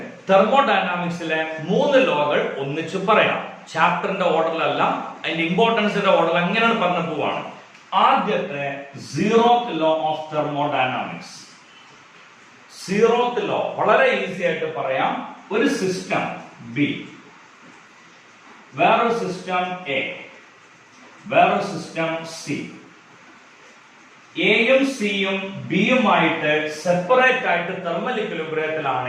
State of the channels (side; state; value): both; identical; correlation 1.00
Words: തെർമോഡൈനാമിക്സിലെ 3 ലോകൾ ഒന്നിച്ച് പറയാം. ചാപ്റ്ററിന്റെ ഓർഡറിലല്ല, അതിന്റെ ഇമ്പോർട്ടൻസിന്റെ ഓർഡർ എങ്ങനെയാണ് പറഞ്ഞു പോവാണ്. ആദ്യത്തെ zeroth law of thermodynamics. Zeroth law വളരെ ഈസി ആയിട്ട് പറയാം. ഒരു സിസ്റ്റം ബി, വേറൊരു സിസ്റ്റം എ, വേറൊരു സിസ്റ്റം സി. എയും സിയും ബിയുമായിട്ട് സെപ്പറേറ്റ് ആയിട്ട് തെർമൽ